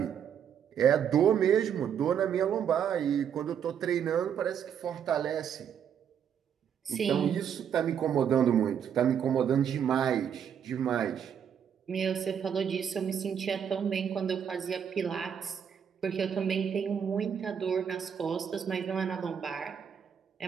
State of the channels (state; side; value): quieter; left; 8.2 dB